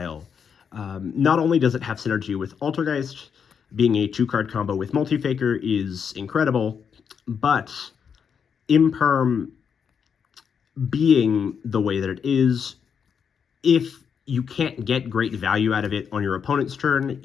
Not only does it have synergy with Altergeist, being a 2-card combo with Multifaker is incredible, but Imperm being the way that it is If you can't get great value out of it on your opponent's turn,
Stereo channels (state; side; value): quieter; right; 6.9 dB